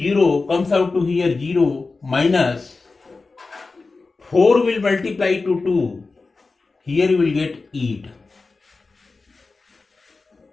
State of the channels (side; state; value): right; quieter; 3.9 dB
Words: comes out to here 0, minus 4 will multiply to 2, here you will get 8,